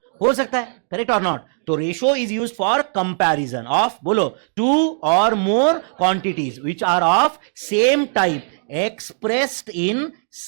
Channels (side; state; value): left; silent; digital silence